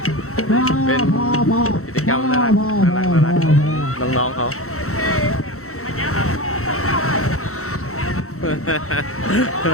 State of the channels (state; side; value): late; right; 0.64 ms